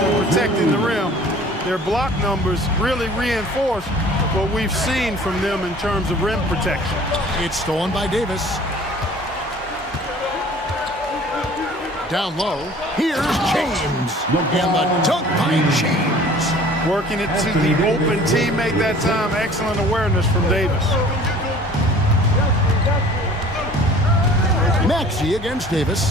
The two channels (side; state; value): both; normal; correlation 0.49